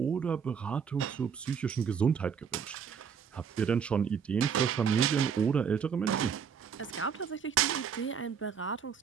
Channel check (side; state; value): left; quieter; 7.0 dB